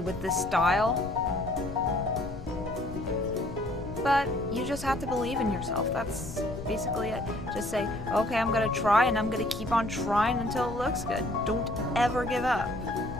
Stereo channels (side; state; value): left; noise; rumble, 11 dB below the sound